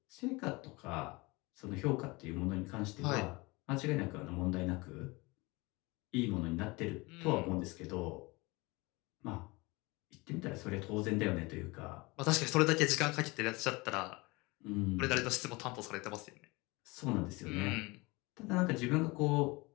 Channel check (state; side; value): quieter; right; 24.5 dB